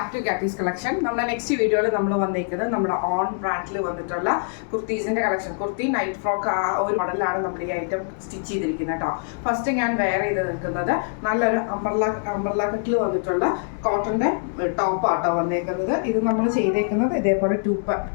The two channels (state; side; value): silent; right; digital silence